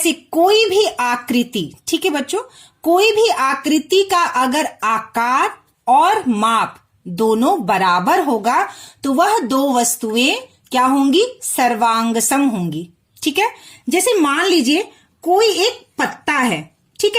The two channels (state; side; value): identical; both; correlation 1.00